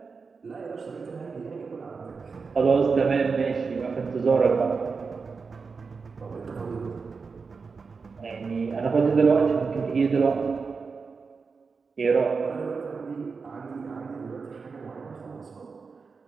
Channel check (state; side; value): quieter; left; 4.9 dB